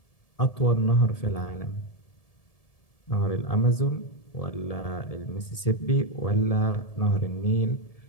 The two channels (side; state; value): right; late; 1.7 ms